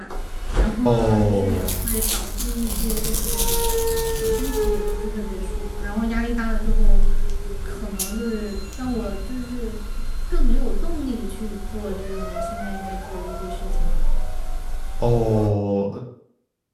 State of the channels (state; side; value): identical; both; correlation 1.00